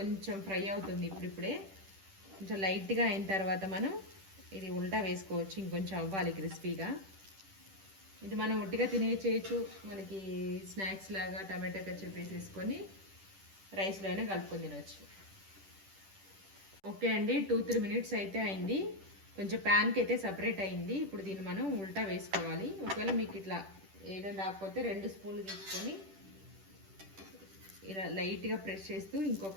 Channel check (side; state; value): left; late; 10 ms